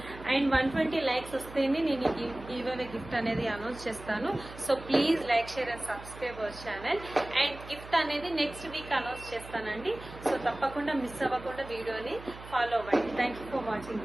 అండ్ 120 లైక్స్ వస్తేనే నేను ఈ గివ్ అవే గిఫ్ట్ అనేది అనౌన్స్ చేస్తాను. So please like, share and subscribe our channel. And gift అనేది నెక్స్ట్ వీక్ అనౌన్స్ చేస్తానండి. సో తప్పకుండా మిస్ అవ్వకుండా వీడియోని ఫాలో అవ్వండి. Thank you for watching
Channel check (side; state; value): right; noise; hum, 15 dB below the sound